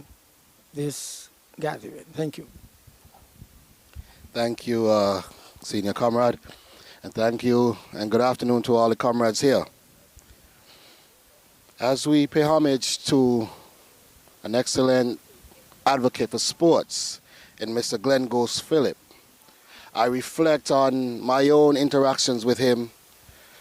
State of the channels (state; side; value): identical; both; correlation 1.00